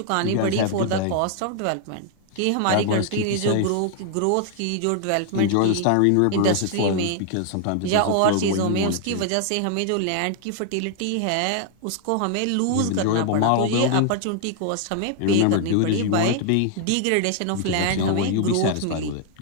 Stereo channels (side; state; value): both; different; correlation 0.00